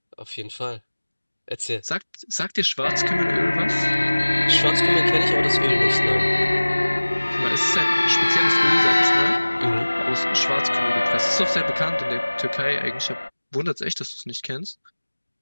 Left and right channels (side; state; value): both; inverted; correlation -1.00